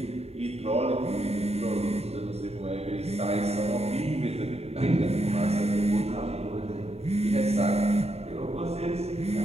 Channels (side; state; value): left; late; 0.30 ms